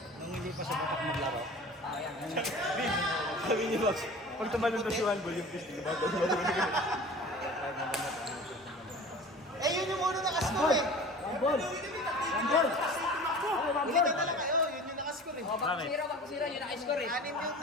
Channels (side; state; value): both; normal; correlation 0.40